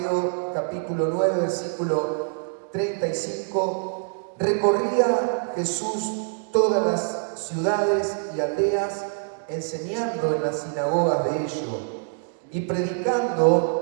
capítulo 9, versículo 35. Recorría Jesús todas las ciudades y aldeas, enseñando en las sinagogas de ellos y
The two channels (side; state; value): left; silent; digital silence